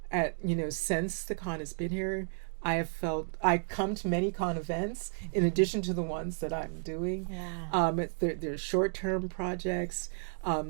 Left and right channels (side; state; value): left; silent; 56 dB below the other